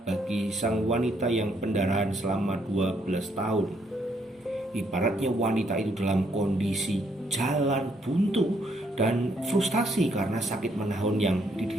bagi sang wanita yang pendarahan selama 12 tahun. Ibaratnya wanita itu dalam kondisi jalan buntu dan frustasi karena sakit menahun yang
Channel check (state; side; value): normal; both; correlation 0.71